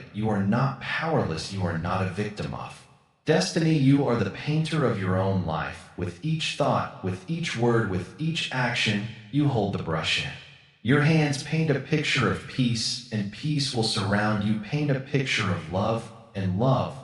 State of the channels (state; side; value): identical; both; correlation 1.00